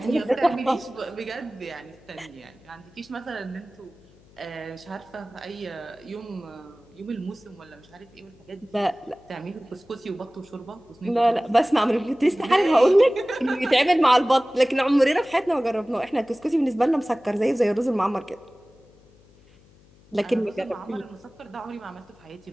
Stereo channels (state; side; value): noise; left; hum, 28 dB below the sound